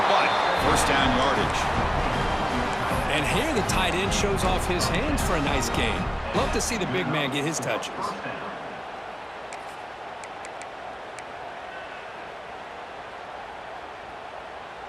but 1st down yardage. And here the tight end shows off his hands for a nice gain. Love to see the big man get his touches.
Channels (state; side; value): identical; both; correlation 1.00